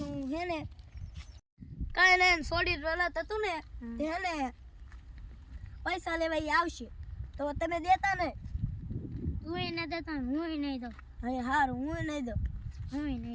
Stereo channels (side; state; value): both; identical; correlation 1.00